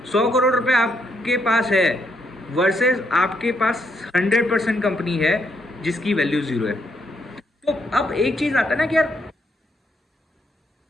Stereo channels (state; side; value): normal; both; correlation 0.75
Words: 100 करोड़ रुपए आपके पास है वर्सेस आपके पास 100% कंपनी है जिसकी वैल्यू 0 है। तो अब एक चीज़ आता है ना कि यार